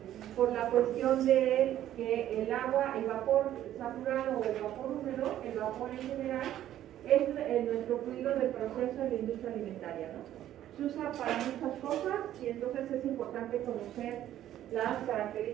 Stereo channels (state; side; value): quieter; left; 12.2 dB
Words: por la cuestión de que el agua, el vapor saturado o el vapor húmedo, el vapor en general, es nuestro fluido del proceso de la industria alimentaria, ¿no? Se usa para muchas cosas y entonces es importante conocer las